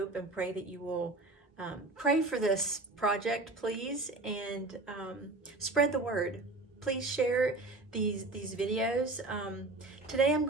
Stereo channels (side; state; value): left; quieter; 3.1 dB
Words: and pray that you will pray for this project, please, and spread the word. Please share these videos. Today I'm